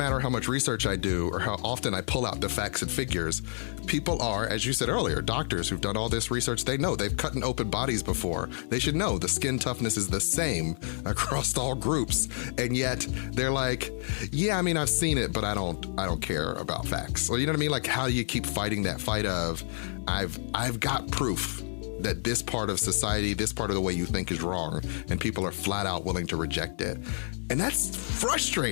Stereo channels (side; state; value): right; silent; digital silence